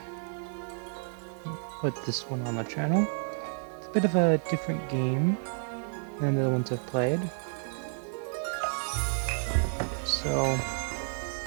put this one on the channel. It's a bit of a different game than the other ones I've played. So,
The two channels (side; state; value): left; silent; digital silence